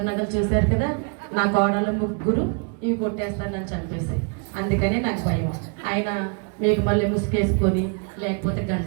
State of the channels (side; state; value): left; quieter; 36.9 dB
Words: నగలు చూశారు కదా, నా కోడలు ముగ్గురు ఇవి కొట్టేస్తానని చంపేసి, అందుకనే నాకు భయం. ఆయన మీకు మళ్ళీ ముసుకేసుకొని లేకపోతే